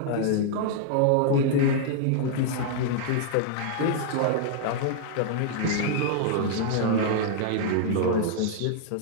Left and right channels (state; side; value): different; both; correlation -0.01